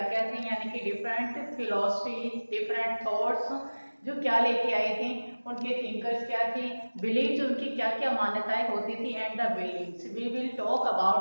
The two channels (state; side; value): inverted; both; correlation -1.00